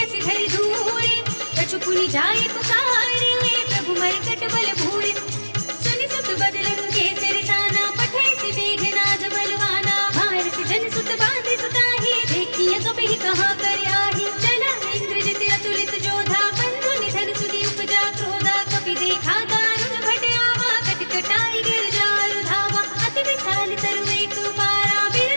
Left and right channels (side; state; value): both; inverted; correlation -1.00